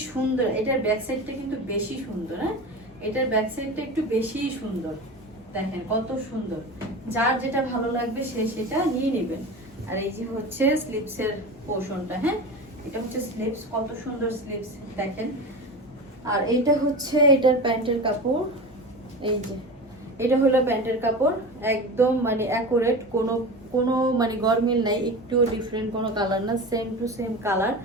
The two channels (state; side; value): normal; both; correlation 0.29